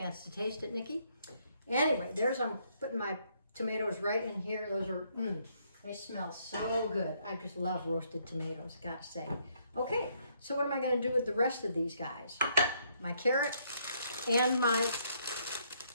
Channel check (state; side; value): inverted; both; correlation -0.71